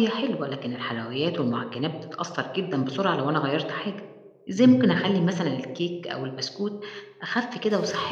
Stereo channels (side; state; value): both; identical; correlation 1.00